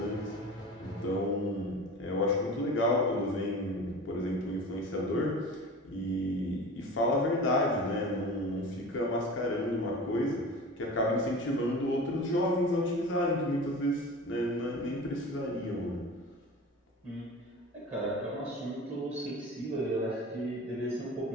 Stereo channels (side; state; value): both; normal; correlation 0.35